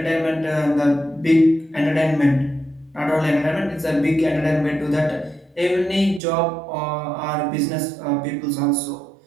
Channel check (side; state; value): left; drops out; at 6.2 s